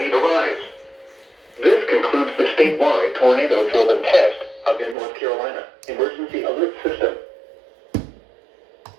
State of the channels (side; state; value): left; drops out; at 5.0 s